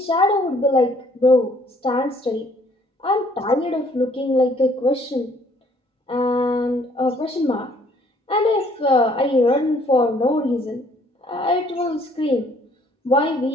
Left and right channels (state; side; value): normal; both; correlation 0.61